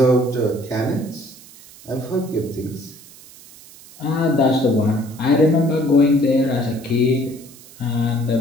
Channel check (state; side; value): noise; right; hiss, 21 dB below the sound